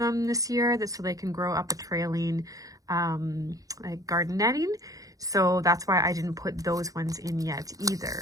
this year, so they can grow up a trailing like garden netting. So that's why I didn't put those ones in yet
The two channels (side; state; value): left; late; 0.17 ms